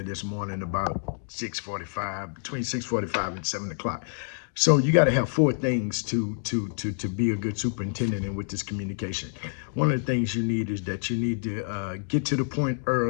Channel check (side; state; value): right; silent; digital silence